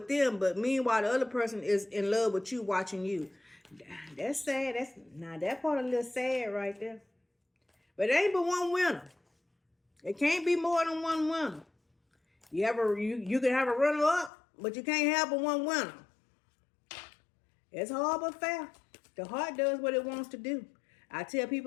them, but meanwhile the other person is in love with you, watching you. That's sad. That part a little sad right there. But it ain't but one winner. It can't be more than one winner. You can have a runner up, but you can't have but one winner. It's hard but fair. The heart does what it wants to do. I tell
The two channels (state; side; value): drops out; right; at 14.3 s